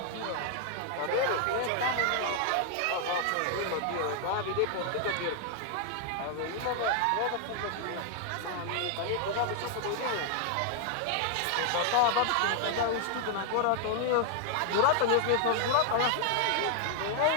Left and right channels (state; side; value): different; both; correlation 0.00